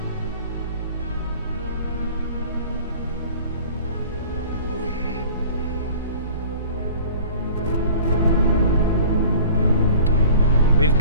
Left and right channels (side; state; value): both; inverted; correlation -0.44